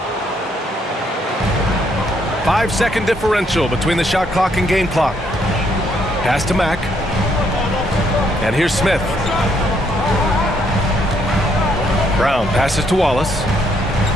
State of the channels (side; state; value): both; normal; correlation 0.71